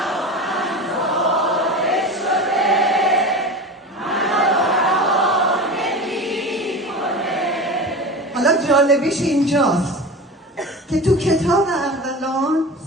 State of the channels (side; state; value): both; normal; correlation 0.30